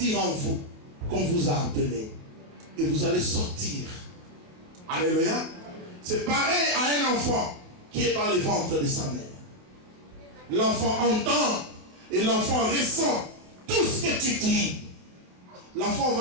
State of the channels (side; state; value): left; late; 28 ms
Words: en vous qu'on vous a appelé. Et vous allez sortir. Alléluia. C'est pareil à un enfant qui est dans le ventre de sa mère. L'enfant entend et l'enfant ressent tout ce que tu dis. L'enfant